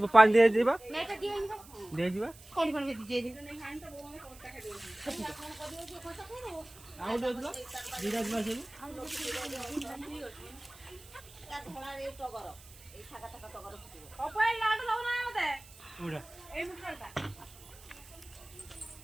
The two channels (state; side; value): noise; right; hiss, 21 dB below the sound